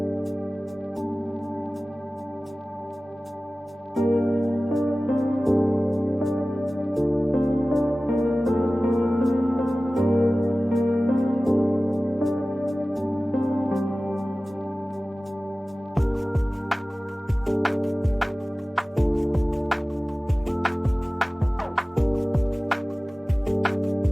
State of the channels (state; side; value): normal; both; correlation 0.97